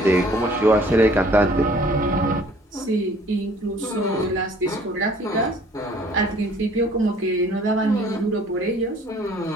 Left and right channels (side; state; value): both; normal; correlation 0.56